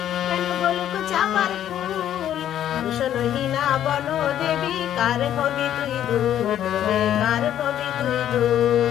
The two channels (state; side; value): quieter; right; 11.0 dB